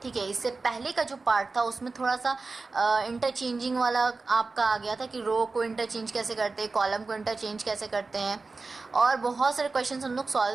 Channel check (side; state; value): left; quieter; 3.9 dB